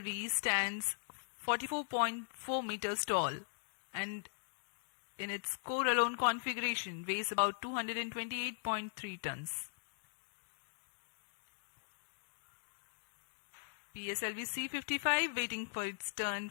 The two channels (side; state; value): right; silent; digital silence